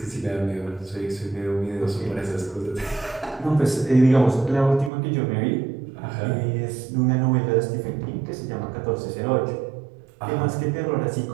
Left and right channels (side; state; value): left; drops out; at 4.9 s